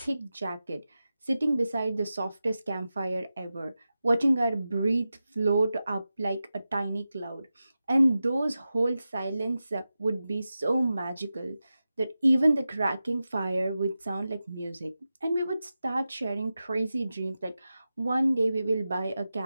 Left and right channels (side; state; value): both; inverted; correlation -0.93